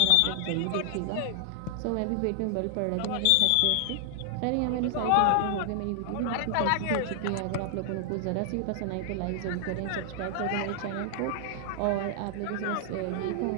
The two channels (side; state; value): both; different; correlation -0.01